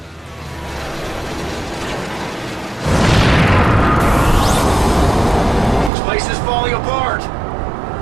This place is falling apart!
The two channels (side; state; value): left; drops out; at 5.9 s